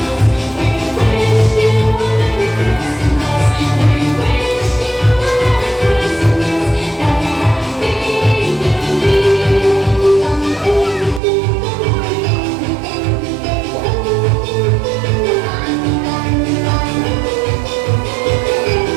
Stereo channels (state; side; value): drops out; left; at 11.2 s